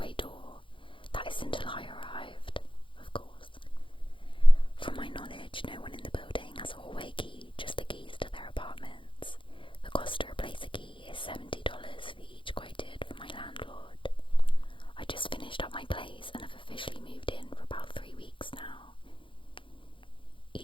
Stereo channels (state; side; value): late; right; 0.25 ms